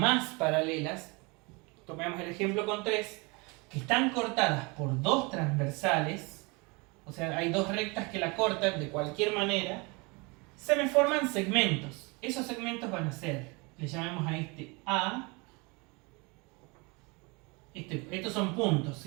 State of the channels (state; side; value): quieter; left; 28.1 dB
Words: paralelas, tomemos el ejemplo con 3, que están cortadas por 2 transversales, o sea, hay 2 rectas que la cortan de cualquier manera, se me forman segmentos. Esos segmentos van a ser, le llamamos a este A, estos son puntos,